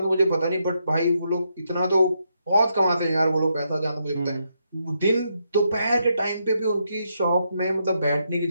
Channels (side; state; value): both; inverted; correlation -0.80